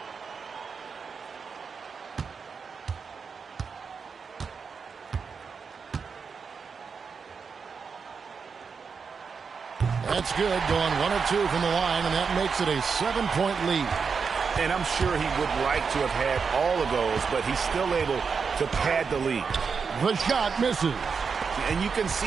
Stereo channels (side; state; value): left; quieter; 5.6 dB